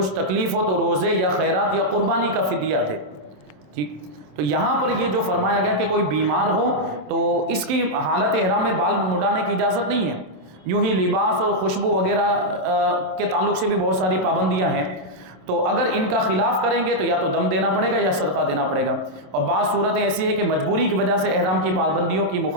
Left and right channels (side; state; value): left; late; 27 ms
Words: تکلیف ہو تو روزے یا خیرات یا قربانی کا فدیہ دے۔ ٹھیک، تو یہاں پر یہ جو فرمایا گیا کہ کوئی بیمار ہو تو اس کی حالت احرام میں بال مڈانے کی اجازت نہیں ہے۔ یوں ہی لباس اور خوشبو وغیرہ کے تعلق سے بھی بہت ساری پابندیاں ہیں، تو اگر ان کا خلاف کریں گے تو یا تو دم دینا پڑے گا یا صدقہ دینا پڑے گا۔ اور بعض صورتیں ایسی ہے کہ مجبوری کی وجہ سے احرام کی پابندیوں کی